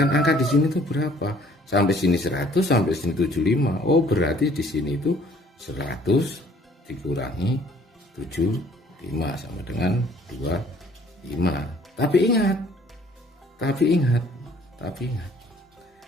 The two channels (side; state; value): both; normal; correlation 0.58